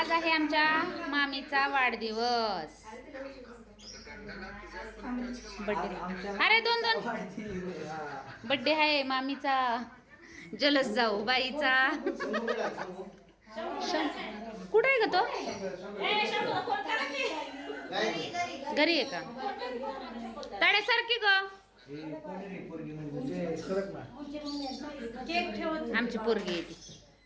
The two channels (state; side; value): identical; both; correlation 1.00